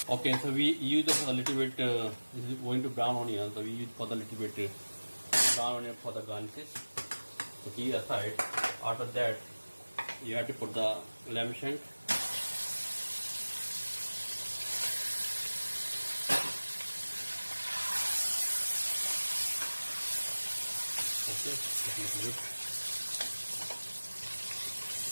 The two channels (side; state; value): both; inverted; correlation -1.00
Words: Okay, so we use a little bit, this is going to brown onion, so we use for the little bit brown onion for the garnishes. So keep aside. After that, you have to put the lamb shank. Okay, just a little bit.